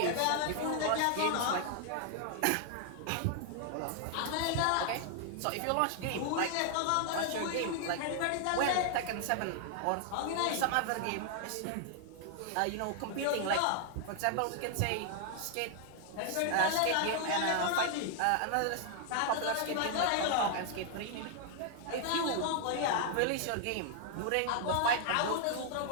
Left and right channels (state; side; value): different; both; correlation 0.00